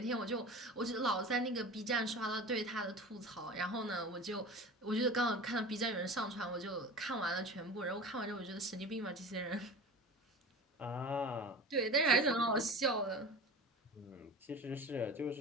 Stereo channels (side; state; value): both; normal; correlation 0.34